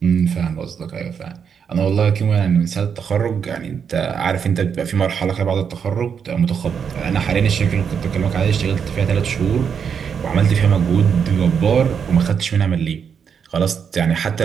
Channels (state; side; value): quieter; left; 7.0 dB